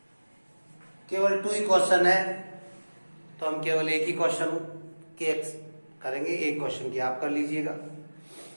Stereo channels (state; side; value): inverted; both; correlation -1.00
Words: केवल 2 ही क्वेश्चन है, तो हम केवल एक ही क्वेश्चन के करेंगे, एक क्वेश्चन की आप कर लीजिएगा।